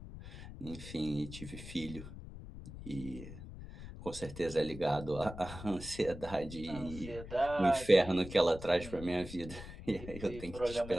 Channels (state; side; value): noise; left; rumble, 12 dB below the sound